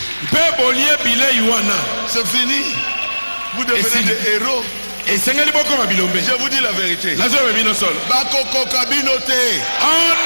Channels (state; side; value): inverted; both; correlation -1.00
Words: mpe bolie bilei wana C'est fini. Vous devenez fini. des héros. esengeli bokoma bilombe Je vous dis la vérité. nazoyoba bino solo Bakoko Kabinote. on